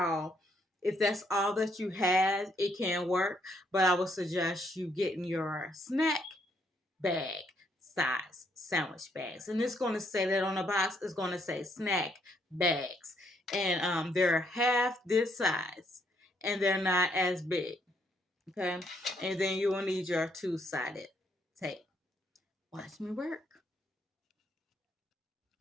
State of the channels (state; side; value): normal; both; correlation 0.72